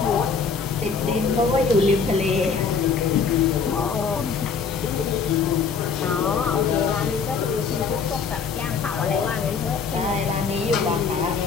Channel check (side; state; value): right; quieter; 5.6 dB